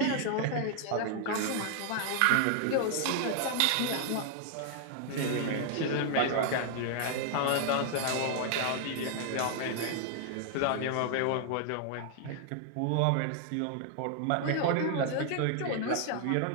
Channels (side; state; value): both; different; correlation 0.00